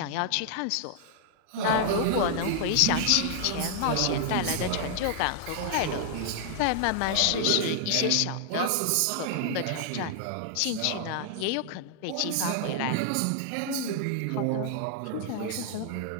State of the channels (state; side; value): different; both; correlation 0.00